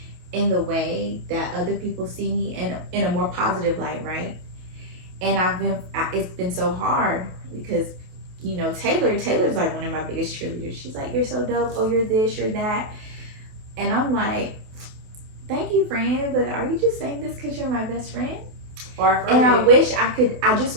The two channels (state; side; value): late; left; 28 ms